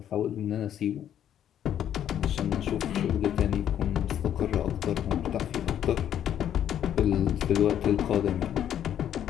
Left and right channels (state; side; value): quieter; right; 10.2 dB